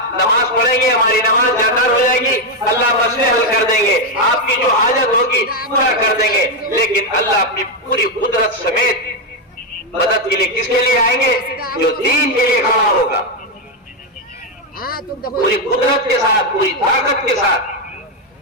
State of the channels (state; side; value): normal; both; correlation 0.04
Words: نماز پڑھیں گے، ہماری نماز جاکار ہو جائے گی، اللہ مسئلے حل کر دیں گے، آپ کی جو حاجت ہوگی پورا کر دیں گے. لیکن اللہ اپنی پوری قدرت سمیت مدد کے لیے کس کے لیے آئیں گے؟ جو دین کے لیے کھڑا ہوگا، پوری قدرت کے ساتھ، پوری طاقت کے ساتھ،